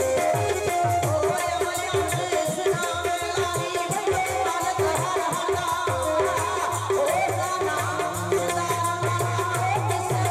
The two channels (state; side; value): identical; both; correlation 1.00